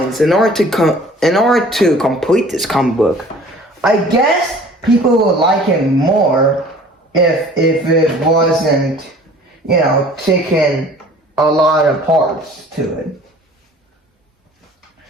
In order to complete this comic book, I guess people would like it more if it wasn't, you know, taking a lot of parts to it.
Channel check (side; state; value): both; normal; correlation 0.49